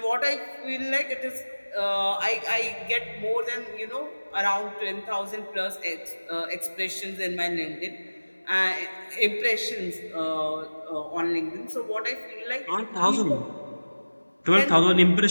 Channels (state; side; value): inverted; both; correlation -1.00